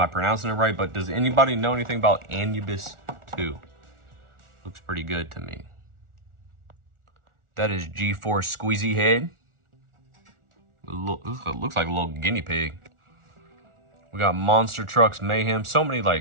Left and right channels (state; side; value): late; left; 1.4 ms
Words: pronouncing it right? But does anybody know anything about Anubis 2? Looks pretty good to me. That is G-Force Squeezy Head. Looks like a little guinea pig. We got Monster Trucks Mayhem. So many